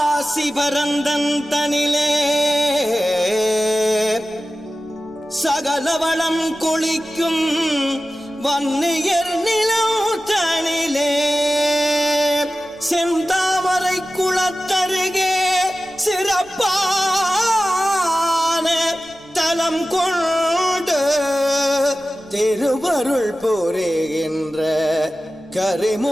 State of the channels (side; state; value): left; noise; rumble, 29 dB below the sound